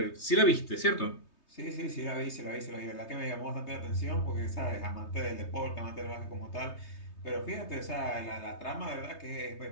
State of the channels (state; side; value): late; right; 3.2 ms